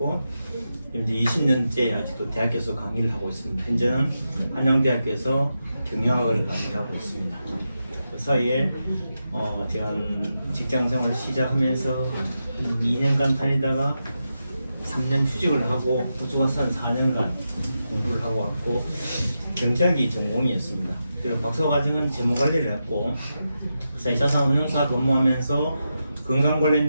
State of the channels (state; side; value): inverted; both; correlation -0.88